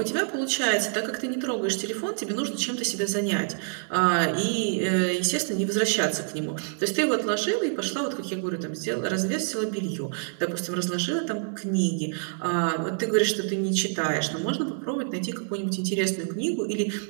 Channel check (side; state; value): left; silent; 60 dB below the other